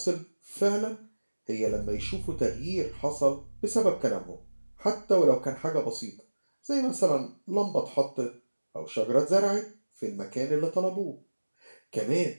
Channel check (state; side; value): inverted; both; correlation -1.00